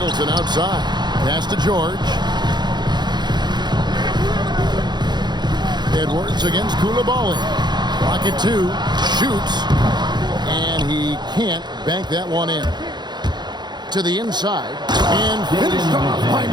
outside. Pass to George. Edwards against Koulibaly. Rocket 2. Shoots. And he can't bank that one in. To the inside. And finished off by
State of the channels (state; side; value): late; left; 0.21 ms